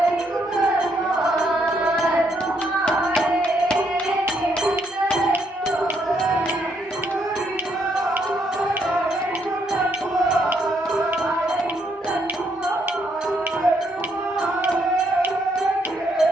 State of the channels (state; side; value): normal; both; correlation 0.73